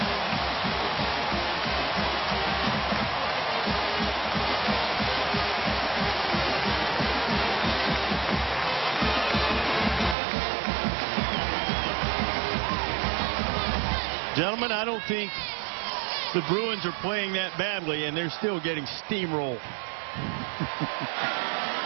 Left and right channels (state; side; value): drops out; left; at 10.2 s